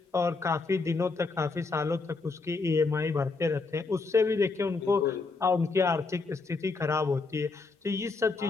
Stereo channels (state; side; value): quieter; right; 4.0 dB